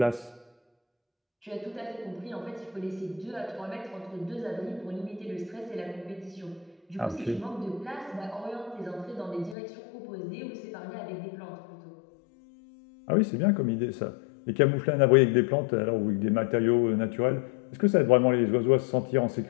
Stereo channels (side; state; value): right; drops out; at 9.6 s